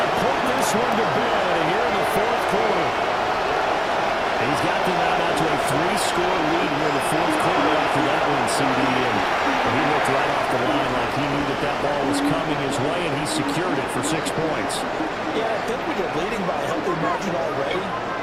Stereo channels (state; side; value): identical; both; correlation 1.00